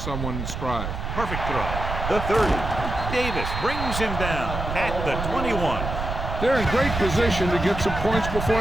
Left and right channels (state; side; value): noise; right; rumble, 5 dB below the sound